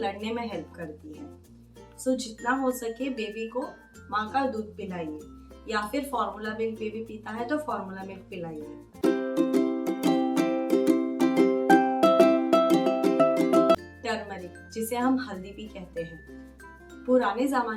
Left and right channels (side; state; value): both; identical; correlation 1.00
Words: में हेल्प करती है। जितना हो सके बेबी को माँ का दूध पिलाइए, या फिर फॉर्मूला मिल्क बेबी पीता है तो फॉर्मूला मिल्क पिलाइए। टर्मरिक, जिसे हम हल्दी भी कहते हैं, पुराने